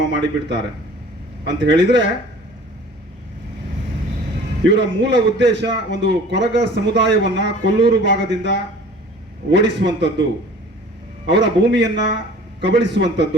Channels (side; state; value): both; normal; correlation 0.47